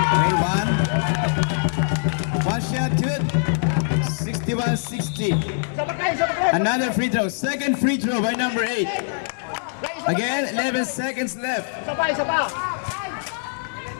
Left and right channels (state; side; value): silent; right; 63 dB below the other